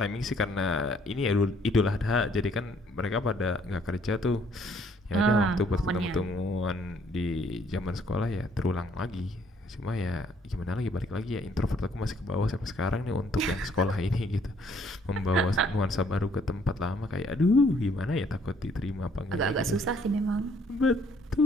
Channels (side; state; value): both; normal; correlation 0.64